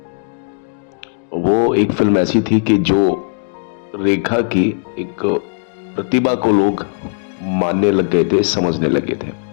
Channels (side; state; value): right; silent; digital silence